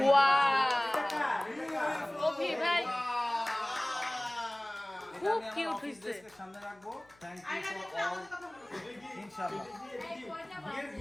ওয়াও, কবি ভাই খুব কিউট হয়েছে। সামনে রাখবো। Thank you for all. ইনশাআল্লাহ।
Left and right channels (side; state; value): left; noise; hum, 30 dB below the sound